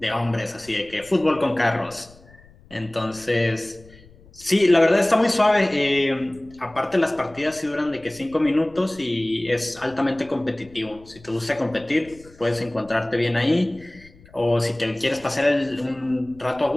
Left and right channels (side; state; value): left; noise; rumble, 24 dB below the sound